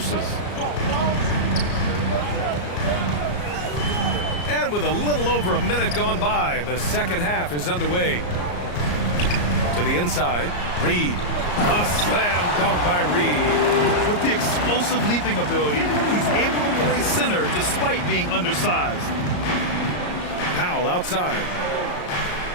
And with a little over a minute gone by, the second half is underway. To the inside, Reed. A slam dunk by Reed. With the explosive leaping ability, he's able to play center despite being undersized. Powell outside.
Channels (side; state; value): right; late; 34 ms